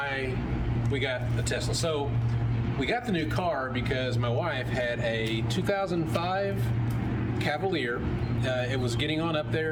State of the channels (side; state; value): both; identical; correlation 1.00